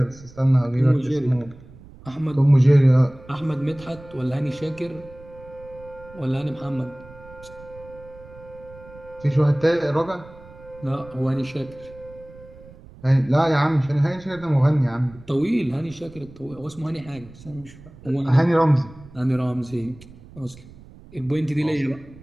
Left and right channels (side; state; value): right; noise; rumble, 20 dB below the sound